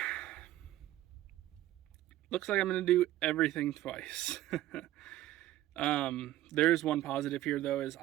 looks like I'm gonna do everything twice. There's one positive here though, is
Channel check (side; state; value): left; quieter; 14.5 dB